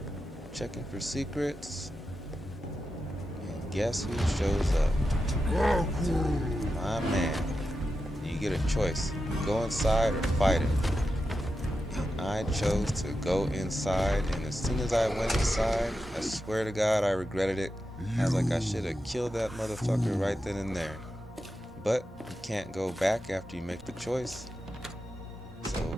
checking for secrets, and guess who shows up? My man. You get a choice, go inside or fight him. And I chose to go inside, and as soon as I went inside, I swear to God I regretted it. I was like, I should have killed that motherfucker right then and there. But you can't go back after you make the choice,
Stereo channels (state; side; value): normal; both; correlation 0.89